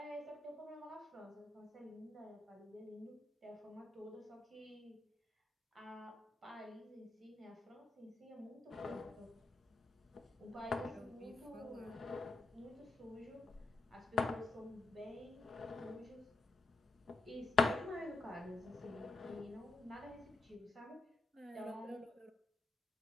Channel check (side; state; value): right; quieter; 3.3 dB